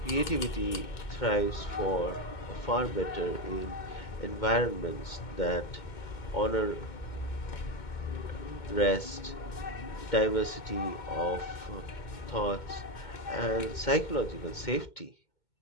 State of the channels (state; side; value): late; right; 2.2 ms